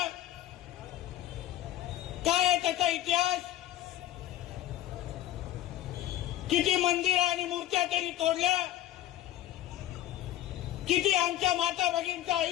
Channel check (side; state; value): right; quieter; 13.8 dB